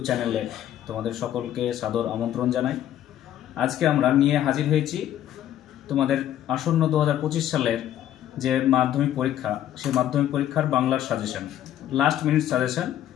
চ্যানেলে তোমাদের সকলকে সাদর আমন্ত্রণ জানাই। আজকে আমরা নিয়ে হাজির হয়েছি তোমাদের আসন্ন 2025 সালের যে মাধ্যমিক পরীক্ষা, সেই মাধ্যমিক পরীক্ষার বাংলার সাজেশন, লাস্ট মিনিট সাজেশন,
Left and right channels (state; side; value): quieter; right; 11.6 dB